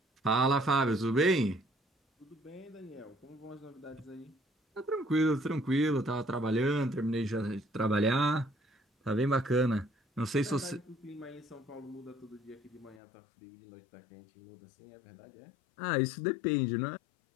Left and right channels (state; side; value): drops out; right; at 13.0 s